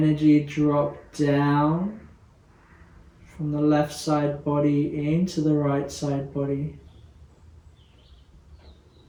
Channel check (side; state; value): both; identical; correlation 1.00